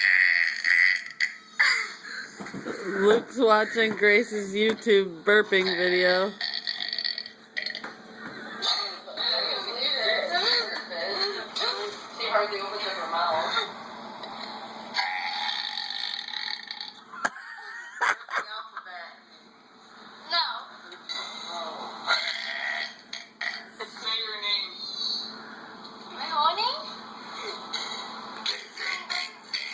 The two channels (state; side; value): identical; both; correlation 1.00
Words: Luke's watching Grace's YouTube burping video. She hardly opens up her mouth. No. Say your name. My whole name?